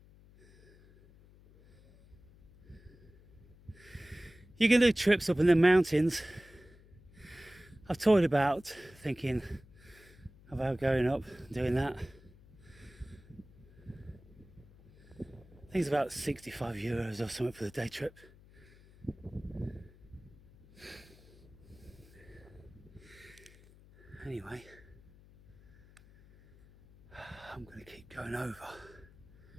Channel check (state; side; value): noise; left; hum, 24 dB below the sound